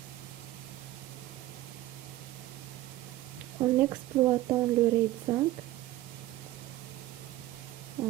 En exploitant le RAID 5,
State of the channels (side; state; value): left; quieter; 15.8 dB